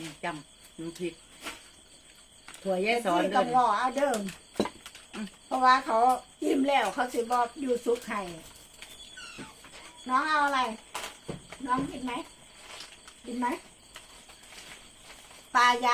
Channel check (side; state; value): both; identical; correlation 1.00